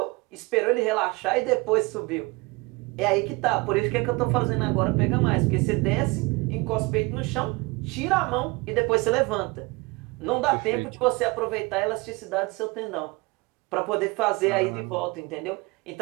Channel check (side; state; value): left; quieter; 25.0 dB